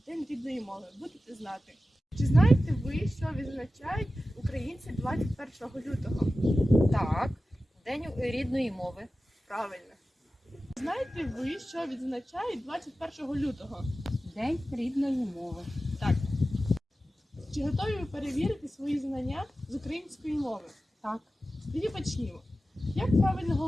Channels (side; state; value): both; normal; correlation 0.94